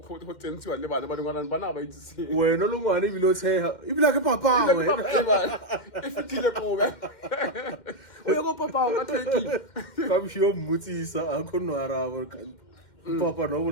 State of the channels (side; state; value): right; late; 2.1 ms